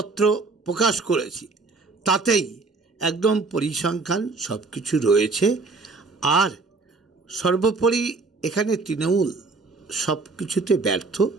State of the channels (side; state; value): left; quieter; 3.9 dB